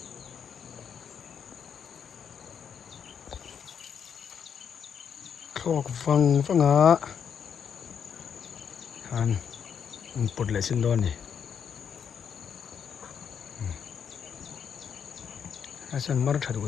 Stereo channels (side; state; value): right; quieter; 7.5 dB